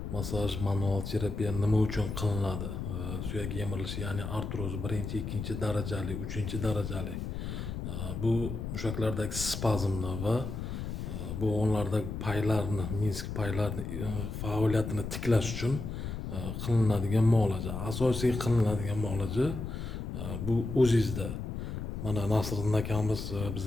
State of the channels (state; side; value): noise; left; rumble, 5 dB below the sound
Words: massaj manual terapiya nima uchun qilinadi? Suyak yemirilishi, ya'ni artroz 1-chi, 2-chi darajali, 3-chi darajali. Bu mushaklardagi spazmni va bo'g'inlardagi paylarni, minsk paylarini faoliyatini tiklash uchun qilinadigan muolaja. Asosiy qilinadigan muolaja bu o'zingizda. Mana Nasriddin akamiz